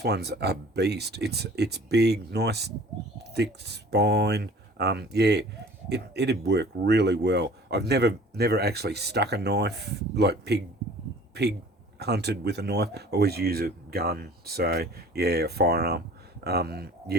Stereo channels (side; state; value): both; normal; correlation 0.48